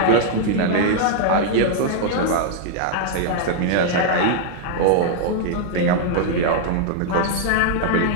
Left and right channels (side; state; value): both; different; correlation -0.01